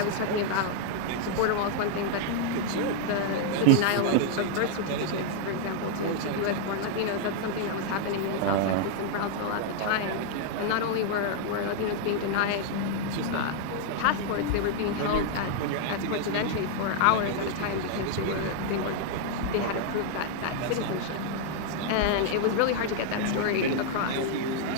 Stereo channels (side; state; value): both; different; correlation 0.00